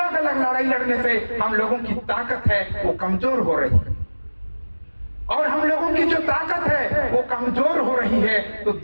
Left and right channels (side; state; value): both; inverted; correlation -1.00